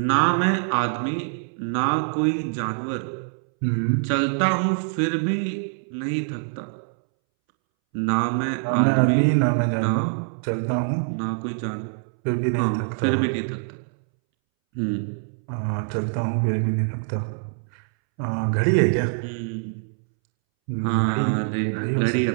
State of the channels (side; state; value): left; silent; 62 dB below the other